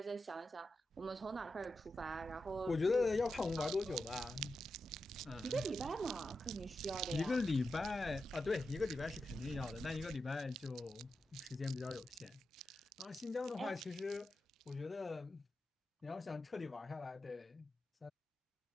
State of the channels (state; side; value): normal; both; correlation 0.89